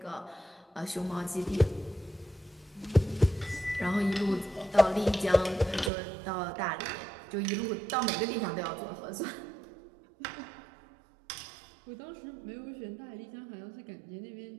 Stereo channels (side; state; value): left; drops out; at 5.9 s